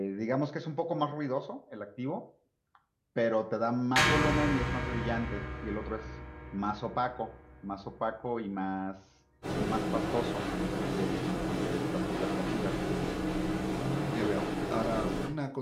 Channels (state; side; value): identical; both; correlation 1.00